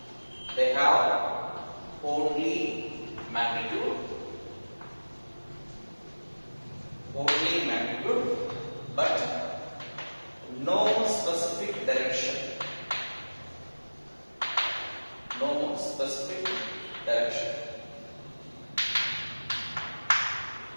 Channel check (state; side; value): inverted; both; correlation -1.00